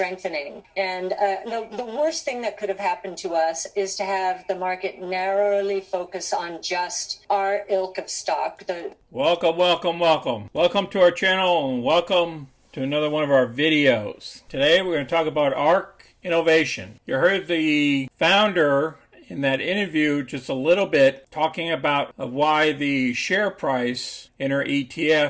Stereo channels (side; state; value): both; identical; correlation 1.00